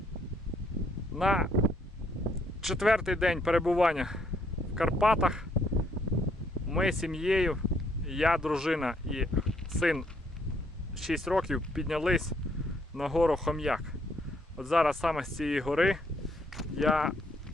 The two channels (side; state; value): both; normal; correlation 0.70